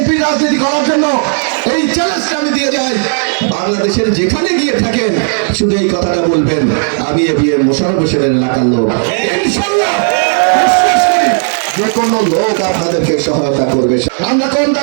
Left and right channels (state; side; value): silent; left; 56 dB below the other